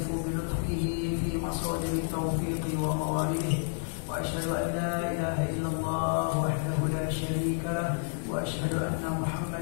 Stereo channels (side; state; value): right; silent; digital silence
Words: bi lutfihi fi masadiri tawfiqi wa mawalidih. وأشهد أن لا إله إلا الله وحده لا شريك له وأشهد أن